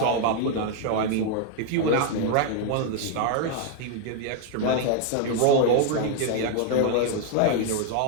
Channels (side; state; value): both; different; correlation 0.00